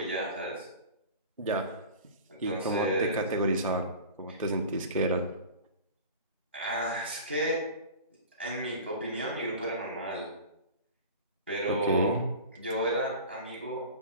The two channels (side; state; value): both; inverted; correlation -0.37